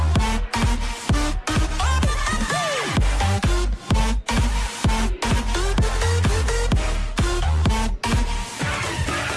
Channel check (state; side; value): identical; both; correlation 1.00